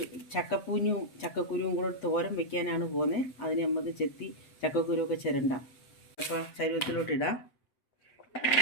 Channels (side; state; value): right; late; 8.2 ms